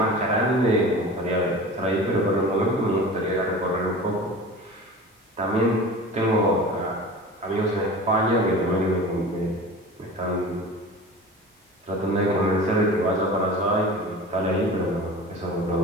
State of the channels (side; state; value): both; normal; correlation 0.36